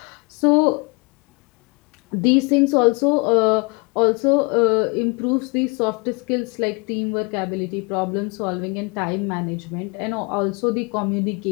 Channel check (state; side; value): quieter; right; 30.2 dB